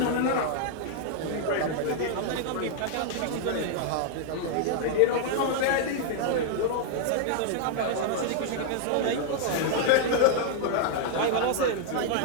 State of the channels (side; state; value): both; different; correlation 0.00